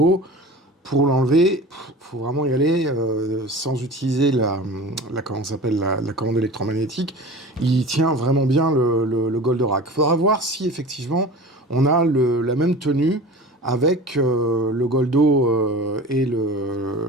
Pour l'enlever, faut vraiment y aller sans utiliser comment ça s'appelle, la commande électromagnétique. Il tient vraiment bien le Goldorak. Il faudra voir si effectivement on a la même tenue avec le Goldo et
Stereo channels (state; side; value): normal; both; correlation 0.37